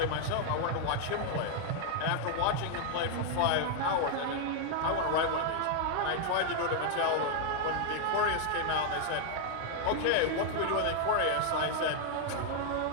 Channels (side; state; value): both; different; correlation 0.00